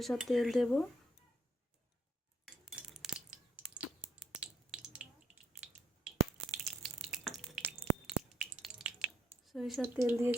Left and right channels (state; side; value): normal; both; correlation 0.71